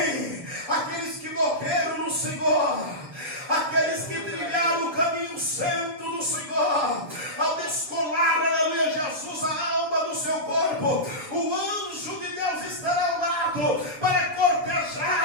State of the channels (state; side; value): late; left; 7.3 ms